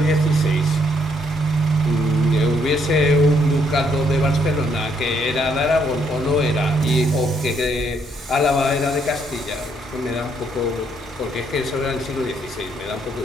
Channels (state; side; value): normal; both; correlation 0.71